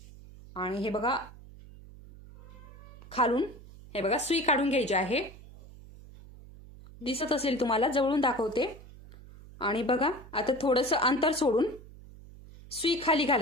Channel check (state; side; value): noise; right; hum, 19 dB below the sound